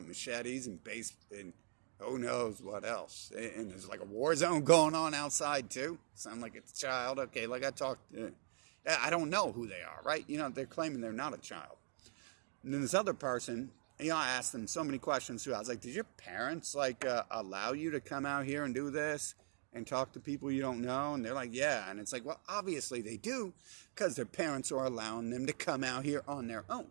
machetes and and who knows what else. And there's like a war zone going on outside, too. Sound like it's a child. Okay, like I talked, I don't know who they are, right? They're claiming they're not a child. And then this other person, I asked them so many questions, too. I was like, did your parents, allow you to come out here and do this and talk to people you don't know? And they're like, yeah. And it's like, well, obviously they do because their parents are allowing them to come out here on their own.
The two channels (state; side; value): silent; left; digital silence